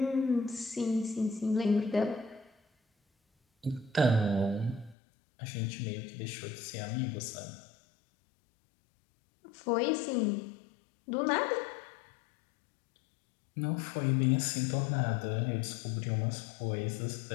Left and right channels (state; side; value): drops out; right; at 5.0 s